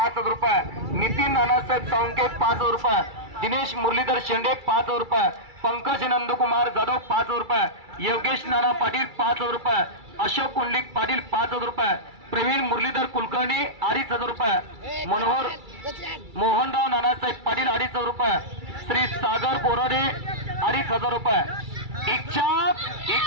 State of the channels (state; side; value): late; left; 2.3 ms